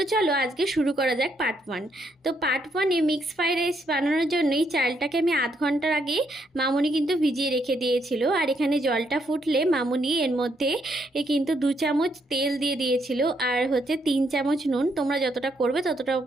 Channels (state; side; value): normal; both; correlation 0.75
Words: চলো আজকে শুরু করা যাক পার্ট 1। তো পার্ট 1-এ মিক্স ফ্রাইড রাইস বানানোর জন্যই চালটাকে আমি আধ ঘন্টার আগে মামুনি কিন্তু ভিজিয়ে রেখে দিয়েছিল। আর এখানে জলটা ফুটলে মামুনি এর মধ্যে কিন্তু 2 চামচ তেল দিয়ে দিয়েছিল, আর হচ্ছে 3 চামচ নুন। তোমরা যতটা করবে ততটা